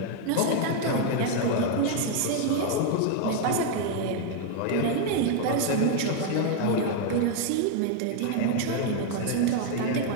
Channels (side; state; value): both; different; correlation 0.00